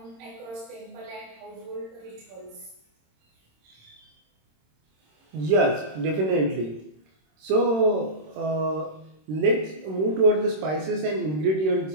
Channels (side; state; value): left; late; 26 ms